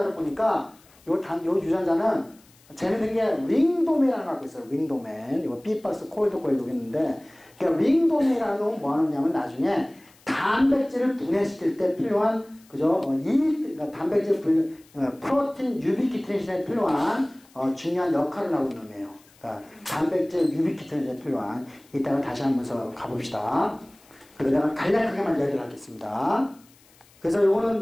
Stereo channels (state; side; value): noise; left; hiss, 29 dB below the sound